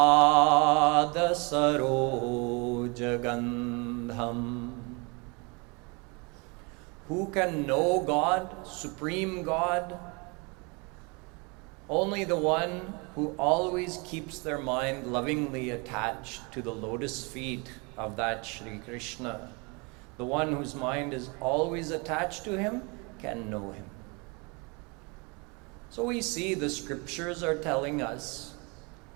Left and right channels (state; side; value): quieter; left; 30.3 dB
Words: sarojagandham. Who can know God, Supreme God? Only the one who always keeps their mind lovingly attached to the lotus feet of that Shri Krishna. The one whose mind is always attached to him can know him. So we see the scriptures are telling us